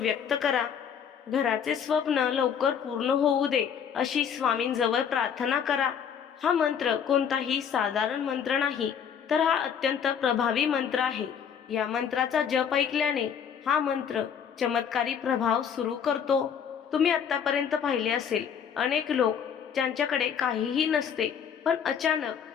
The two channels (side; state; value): right; quieter; 7.7 dB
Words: करा. घराचे स्वप्न लवकर पूर्ण होऊ दे अशी स्वामींजवळ प्रार्थना करा. हा मंत्र कोणताही साधारण मंत्र नाही, तर हा अत्यंत प्रभावी मंत्र आहे. या मंत्राचा जप ऐकल्याने हा मंत्र चमत्कारी प्रभाव सुरू करतो. तुम्ही आतापर्यंत पाहिले असेल, अनेक लोक ज्यांच्याकडे काहीही नसते पण अचानक